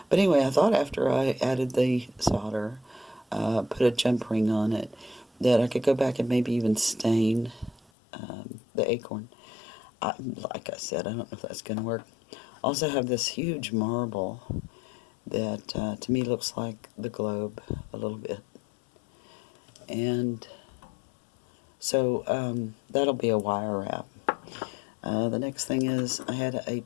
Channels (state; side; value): drops out; right; at 7.9 s